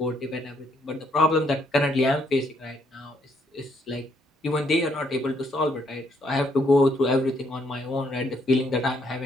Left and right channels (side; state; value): both; normal; correlation 0.71